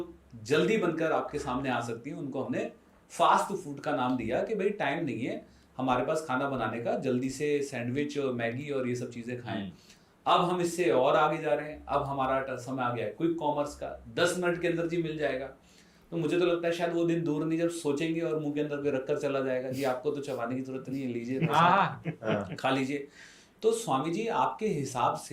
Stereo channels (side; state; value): both; identical; correlation 1.00